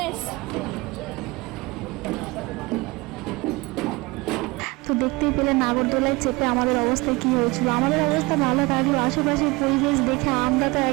তো দেখতেই পেলে নাগরদোলায় চেপে আমাদের অবস্থা কি হয়েছিল। আমাদের অবস্থা ভালো থাকলো, আশেপাশের পরিবেশ দেখে আমরা তো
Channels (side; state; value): left; quieter; 23.5 dB